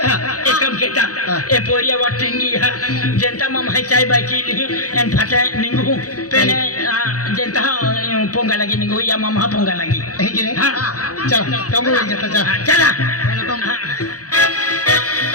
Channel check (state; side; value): late; right; 0.67 ms